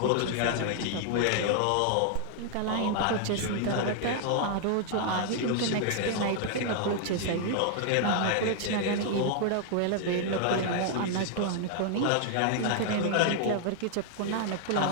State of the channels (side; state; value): both; different; correlation 0.00